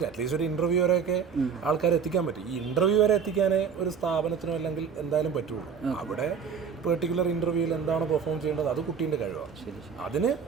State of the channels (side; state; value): left; quieter; 6.6 dB